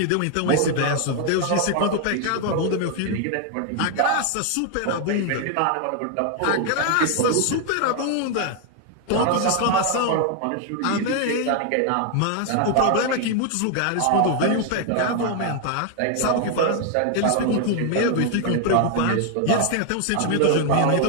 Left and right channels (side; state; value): both; different; correlation 0.00